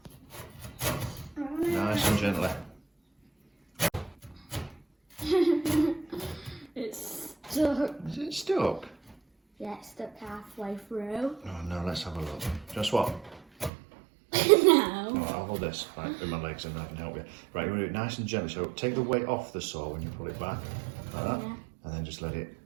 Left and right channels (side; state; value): left; drops out; at 13.7 s